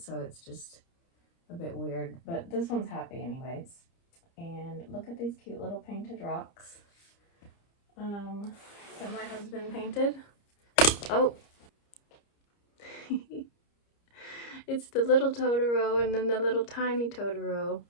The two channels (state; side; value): late; right; 30 ms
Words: it's just a bit weird. But this one's happy anyways. And look at these cute little painted rocks that my husband painted. Oh, it's the little Totoro and then the little tiny Totoro.